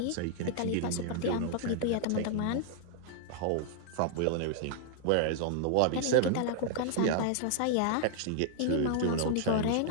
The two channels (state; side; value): different; both; correlation -0.01